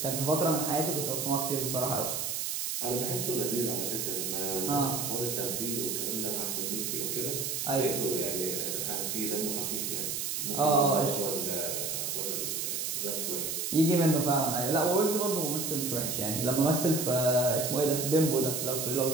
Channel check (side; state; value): right; noise; hiss, 2 dB below the sound